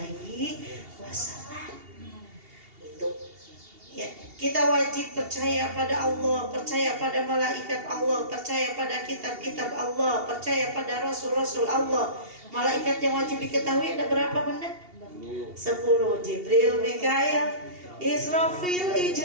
Itu ya, kita wajib percaya pada Allah, percaya pada malaikat Allah, percaya pada kitab-kitab Allah, percaya pada rasul-rasul Allah. Malaikat yang wajib diketahui ada berapa benda? 10. Jibril, Mikail, Israfil,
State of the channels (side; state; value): left; late; 2.8 ms